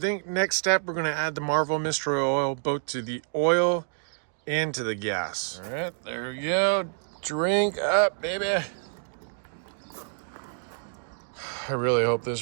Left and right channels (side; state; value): left; silent; digital silence